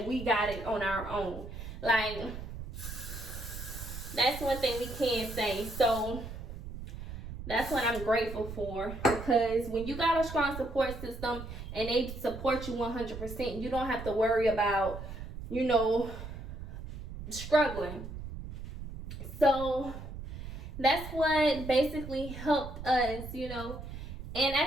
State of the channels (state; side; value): noise; right; rumble, 9 dB below the sound